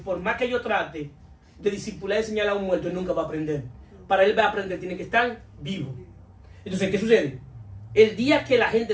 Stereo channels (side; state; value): both; identical; correlation 1.00